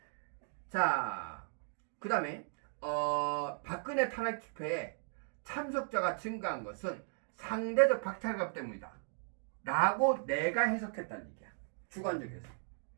자, 그 다음에 박근혜 탄핵 집회에 참석자가 증가한 것은 상대적 박탈감 때문이다 라고 내가 해석했다는 얘기야. 주관적 해석.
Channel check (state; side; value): silent; left; digital silence